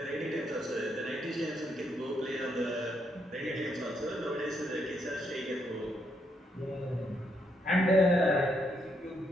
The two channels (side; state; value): both; normal; correlation 0.76